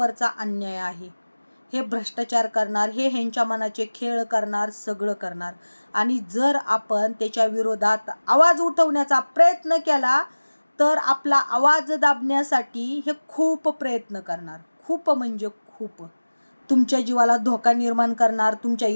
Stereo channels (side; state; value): both; inverted; correlation -1.00